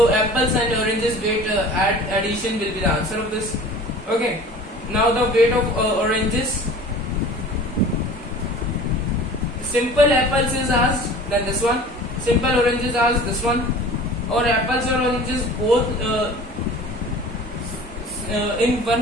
apples and oranges weight addition will be the answer of this. Okay. Now the weight of oranges. Simple apples is asked, then this one. Simple oranges asked, this one. Or apples or oranges both in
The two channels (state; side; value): normal; both; correlation 0.43